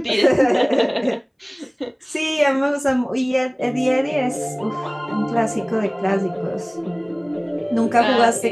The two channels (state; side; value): identical; both; correlation 1.00